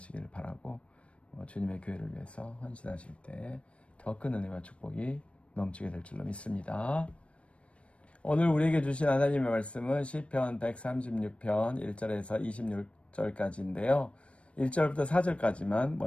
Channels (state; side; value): late; right; 0.061 ms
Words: 바라고 주님의 교회를 위해서 헌신하실 때 더 큰 은혜와 축복이 넘치게 될 줄로 믿습니다. 오늘 우리에게 주신 하나님의 말씀은 시편 136편 1절에서 26절까지인데요. 1절부터 4절까지만